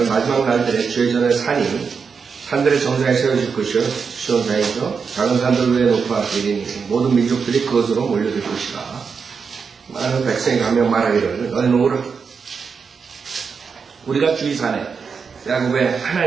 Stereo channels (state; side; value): quieter; left; 5.7 dB